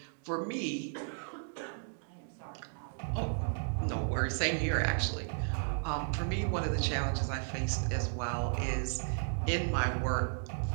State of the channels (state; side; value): silent; left; 55 dB below the other